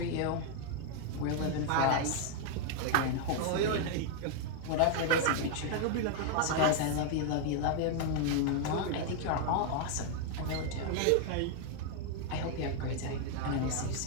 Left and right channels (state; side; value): different; both; correlation 0.00